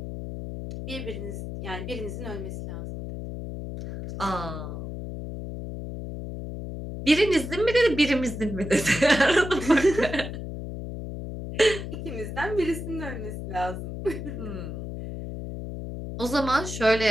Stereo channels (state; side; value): noise; left; hum, 7 dB below the sound